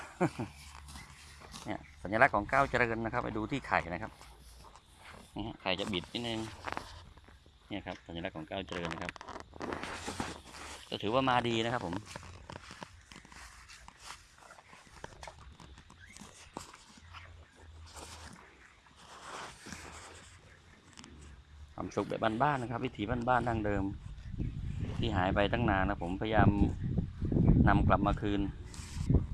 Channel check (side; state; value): both; identical; correlation 1.00